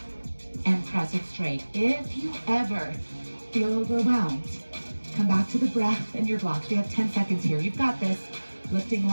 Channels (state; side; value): inverted; both; correlation -1.00